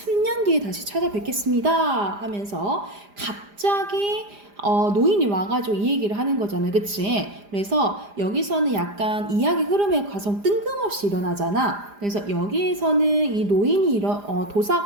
뒤에 다시 찾아뵙겠습니다. 하면서 갑자기 노인이 와가지고 이 얘기를 하는 거잖아요. 그치? 그래서 여기서는 약간 이야기 흐름의 과정 뜬금없이 일어나잖아. 그래서 여기에서는 이 노인이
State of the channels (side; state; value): left; late; 4.9 ms